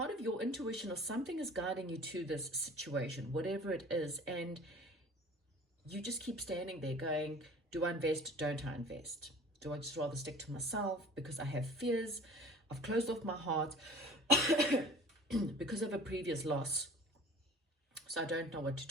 of your intuition or something is guiding you to this situation, whatever it is, and you just keep standing there going, do I invest? Don't I invest? Do I just rather stick to myself because I have fears? I've closed off my heart because of a previous loss. So I don't know what to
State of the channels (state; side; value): normal; both; correlation 0.44